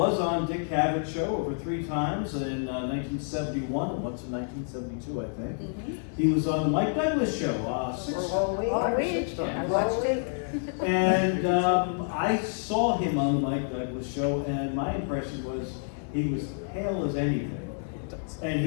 on Dick Cavett's show over 3 times in 1971 and once in 1972, I think. He was on the Mike Douglas show 6 times. And I saw him on the Mike Douglas show, and my impression was he was pale as anything. And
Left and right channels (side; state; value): right; silent; 59 dB below the other